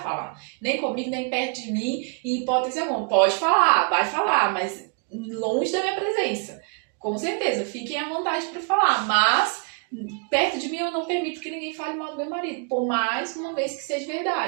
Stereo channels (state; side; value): quieter; left; 37.1 dB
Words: Nem comigo, nem perto de mim, em hipótese alguma. Pode falar, vai falar, mas longe da minha presença. Com certeza, fiquem à vontade para falar, mas perto de mim eu não permito que ninguém fale mal do meu marido, por mais uma vez que seja